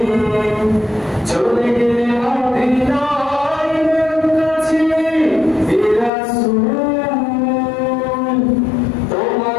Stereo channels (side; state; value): right; drops out; at 6.1 s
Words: চলে গেলে মদিনায় কাছে হে রাসূল,